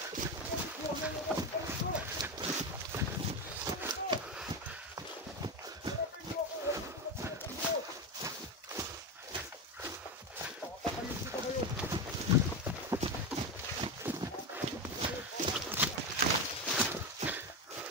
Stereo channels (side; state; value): both; normal; correlation 0.17